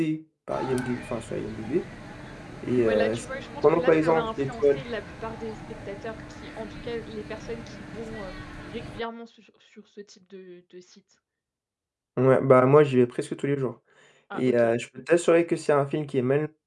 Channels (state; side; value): identical; both; correlation 1.00